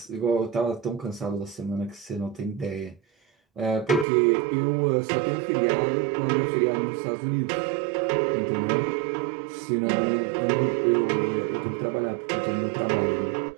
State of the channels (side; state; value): left; drops out; at 4.0 s